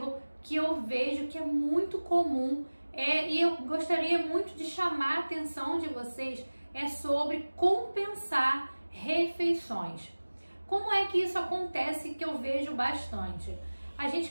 que eu vejo que é muito comum e eu gostaria muito de chamar a atenção de vocês é sobre compensar refeições. Como é que isso acontece que eu vejo bastante? A gente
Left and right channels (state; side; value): inverted; both; correlation -1.00